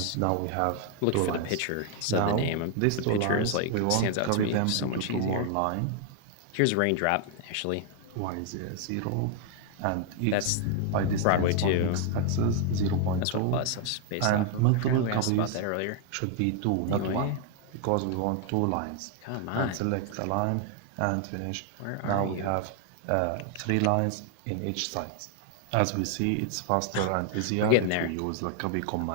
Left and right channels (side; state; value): both; different; correlation 0.00